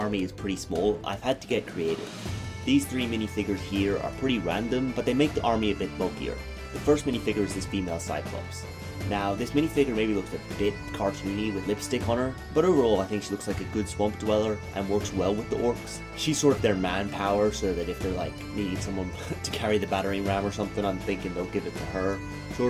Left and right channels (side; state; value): both; identical; correlation 1.00